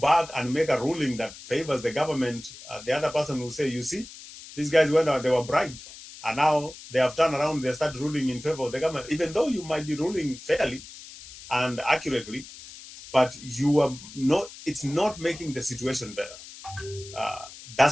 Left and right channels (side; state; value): left; noise; hiss, 16 dB below the sound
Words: and make a ruling that favors the government, the other person will say, you see, these guys went out, they were bribed. And now they have turned around, they start ruling in favor of the government, even though you might be ruling fairly and accurately, but you are not, it's not making the situation better.